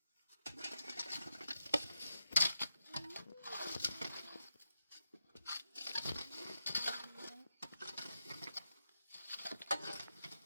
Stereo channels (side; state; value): both; inverted; correlation -0.87